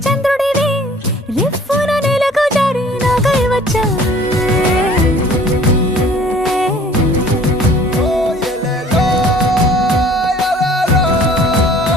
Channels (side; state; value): both; normal; correlation 0.52